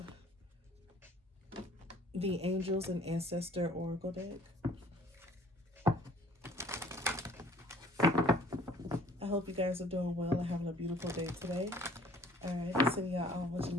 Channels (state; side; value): normal; both; correlation 0.54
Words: the Angels and Ancestor Oracle deck. I hope you guys are doing well and having a beautiful day today. Alright, sending y'all all much